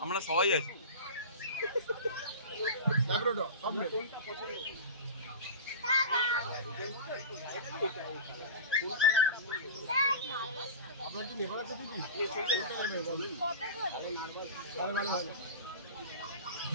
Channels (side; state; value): both; inverted; correlation -0.31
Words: আমরা সবাই আছি। আপনার কি নেপাল আছে কি? ভালো ভালো ভালো।